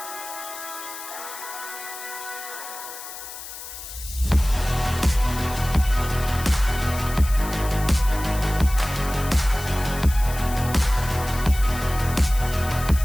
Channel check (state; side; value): noise; left; hiss, 11 dB below the sound